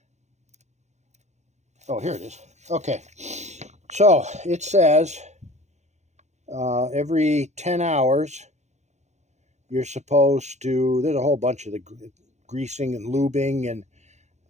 Oh, here it is. Okay. So it says every 10 hours you're supposed to, there's a whole bunch of the greasing and lubing, and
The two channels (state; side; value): late; left; 0.33 ms